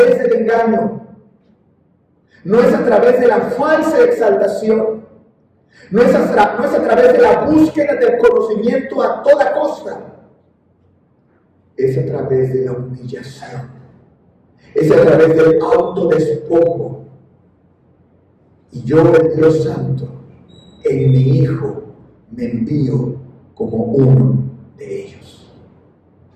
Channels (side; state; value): both; identical; correlation 1.00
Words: del engaño, no es a través de la falsa exaltación, no es a través de la búsqueda del conocimiento a toda costa, es a través de la humillación, es a través del autodespojo. Y yo, el Dios Santo, en mi Hijo me envío como uno de ellos,